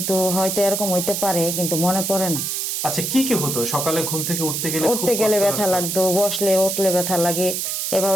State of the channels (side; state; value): right; noise; hiss, 2 dB below the sound